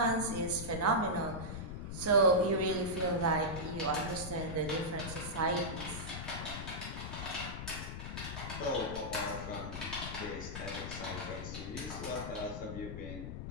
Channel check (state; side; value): noise; left; rumble, 6 dB below the sound